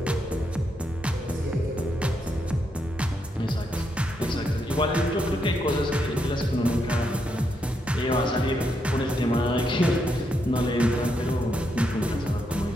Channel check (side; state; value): both; normal; correlation 0.80